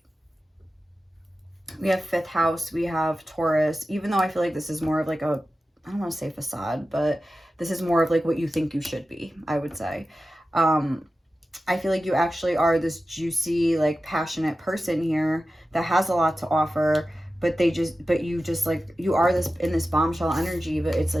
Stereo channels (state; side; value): normal; both; correlation 0.94